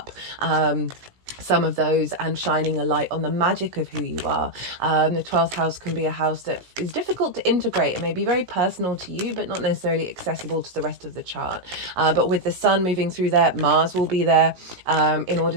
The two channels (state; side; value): late; left; 17 ms